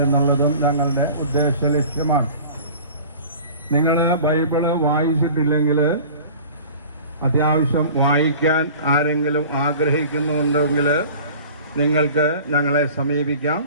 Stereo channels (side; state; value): both; inverted; correlation -0.43